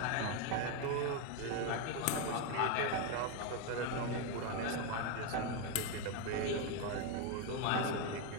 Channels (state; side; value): different; both; correlation 0.02